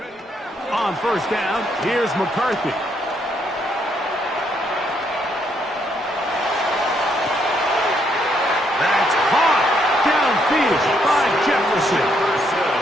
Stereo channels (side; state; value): both; normal; correlation 0.73